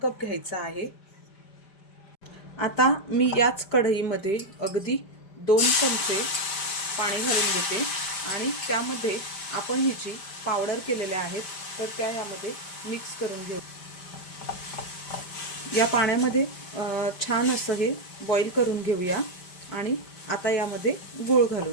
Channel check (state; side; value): late; right; 5.1 ms